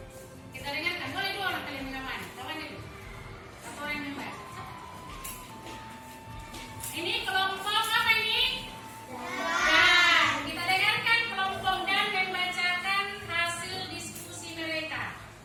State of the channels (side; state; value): both; identical; correlation 1.00